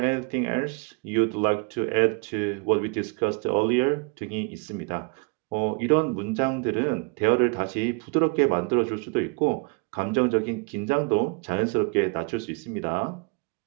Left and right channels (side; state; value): left; quieter; 32.4 dB